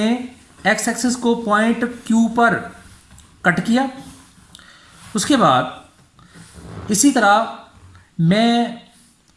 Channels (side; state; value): both; identical; correlation 1.00